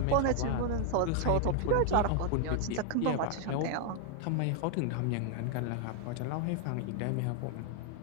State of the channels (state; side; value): different; both; correlation 0.00